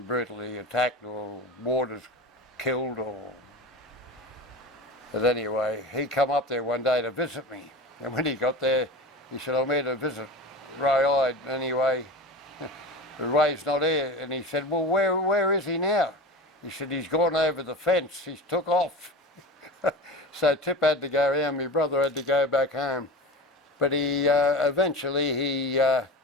brutally attacked or warders killed or... But anyway, he come up there one day to visit me. And when he got there, he said, I'm here to visit Ray. Anyway, Ray's not here. And he said, well, where is he now? He said, he's gone over the fence, he's took off. So Tip had to go around, my brother had to go back home. But he eventually,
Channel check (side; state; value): both; normal; correlation 0.31